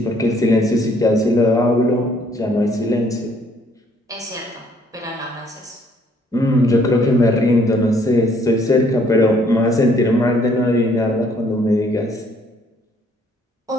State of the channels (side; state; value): both; normal; correlation 0.64